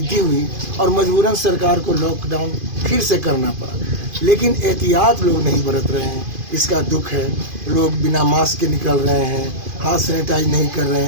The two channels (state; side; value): late; left; 2.5 ms